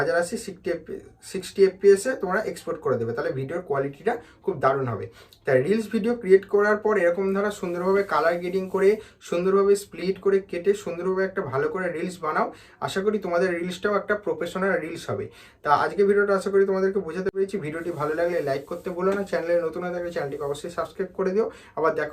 60 fps তোমরা এক্সপোর্ট করে দেবে। তাহলে ভিডিওর কোয়ালিটিটা খুব দারুণ হবে। তাই রিলস ভিডিও ক্রিয়েট করার পর এরকম ধারা সুন্দরভাবে কালার গ্রেডিং করে, সুন্দরভাবে স্প্লিট করে কেটে সুন্দরভাবে একটা ভালো করে রিলস বানাও। আশা করি তোমাদের রিলসটাও একটা প্রফেশনাল রিলস হবে। তা আজকে ভিডিওটা আশা করি তোমাদেরকে বোঝাতে পেরেছি। ভিডিওটি ভালো লাগলে লাইক করতে ভুলো না, চ্যানেলে নতুন হয়ে থাকলে চ্যানেলটিকে অবশ্যই সাবস্ক্রাইব করে দিও। আবার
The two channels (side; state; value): both; identical; correlation 1.00